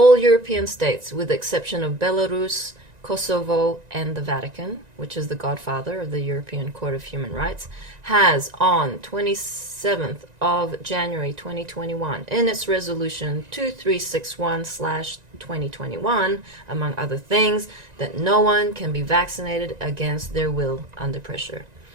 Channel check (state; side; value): late; left; 1.9 ms